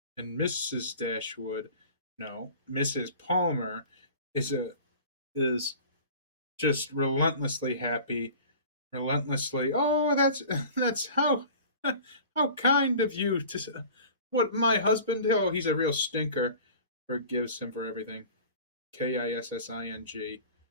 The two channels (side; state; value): both; inverted; correlation -0.42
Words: And Mrs. Dashwood, no, Mrs. Palmer is just relentlessly happy, relentlessly. Oh, that's how kind of you to. What my husband? Oh, he's a real stinker. Forgives him for everything. Kissing.